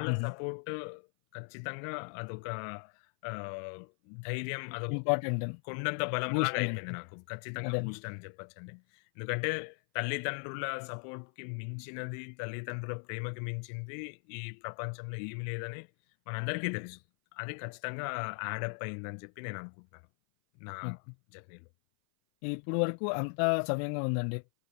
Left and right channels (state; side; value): silent; right; 53 dB below the other